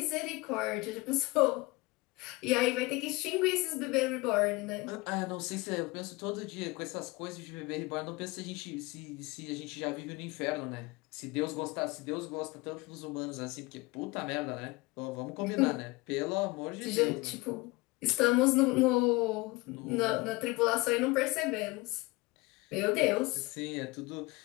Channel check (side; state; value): right; quieter; 23.6 dB